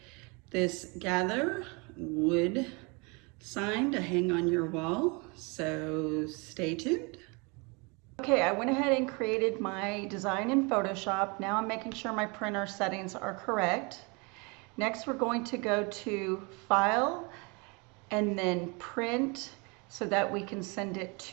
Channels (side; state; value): left; quieter; 30.1 dB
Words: this Gather wood sign to hang on your wall, so stay tuned. Okay, I went ahead and created my design in Photoshop. Now I'm making sure my printer settings are correct. Next, we're going to go to File and then Print so that we can send it